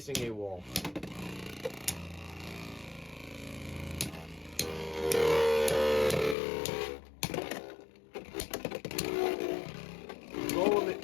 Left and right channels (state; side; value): drops out; right; at 6.4 s